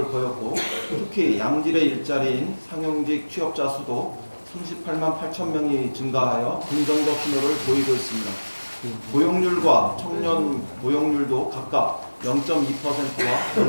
보였고 특히 양질의 일자리인 상용직 취업자 수도 38만 8천 명이 증가하여 긍정적 신호를 보이고 있습니다. 고용률과 청년 고용률도 각각 0.2%와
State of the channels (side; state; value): both; inverted; correlation -1.00